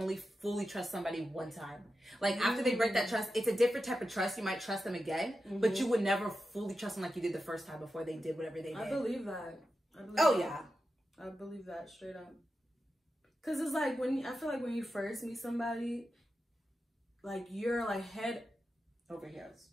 fully trust somebody one time. Like, after they break that trust, it's a different type of trust. You might trust them again, but you would never fully trust them like you did the first time before they did whatever they did. I believe that. Yeah. I believe that straight up. Because it's like, I feel like when you first meet somebody, like, you're like head over heels.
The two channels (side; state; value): both; normal; correlation 0.90